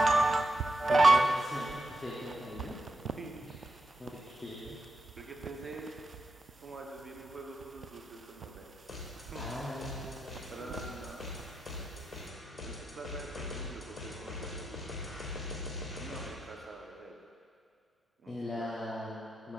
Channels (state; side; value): normal; both; correlation 0.87